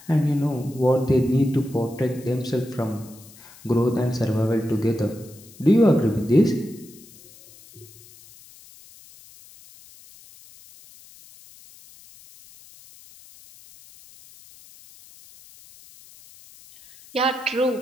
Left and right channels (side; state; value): left; noise; hiss, 23 dB below the sound